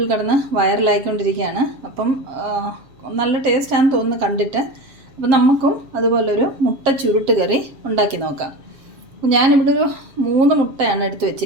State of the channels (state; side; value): late; left; 7.6 ms